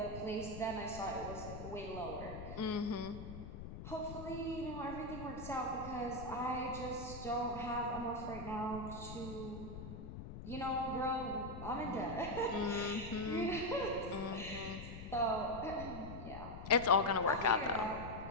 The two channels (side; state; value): left; noise; rumble, 9 dB below the sound